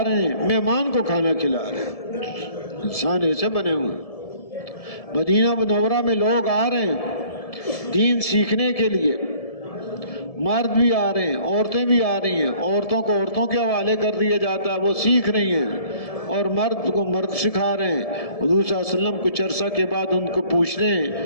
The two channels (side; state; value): right; late; 1.7 ms